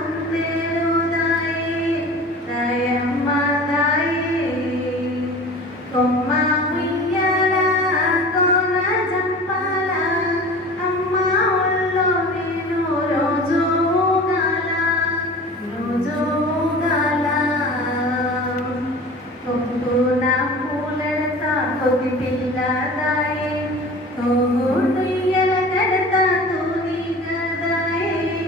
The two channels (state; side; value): normal; both; correlation 0.39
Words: దయమ్మ దాయే కొమ్మ ఉయ్యాల కోన జంపాల అమ్మ ఒళ్ళో నేను రోజు ఊగాల కొక్కున పూలెడతా కొద్ది పిల్లదాయే తోగుడుయ్యల కడతా